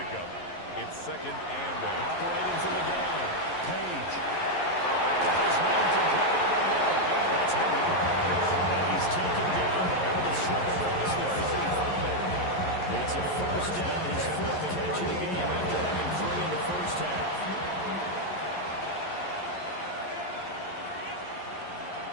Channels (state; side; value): late; right; 11 ms